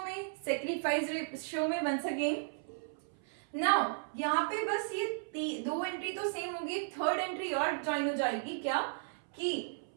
में, सेक्रीफाइस रेशियो में वंस अगेन। नाउ यहाँ पे बस ये दो एंट्री तो सेम होगी, थर्ड एंट्री और ज्वाइन हो जाएगी, क्या कि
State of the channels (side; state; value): left; silent; 54 dB below the other